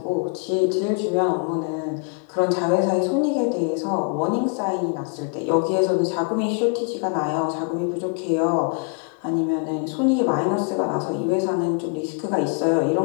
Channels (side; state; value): right; quieter; 36.8 dB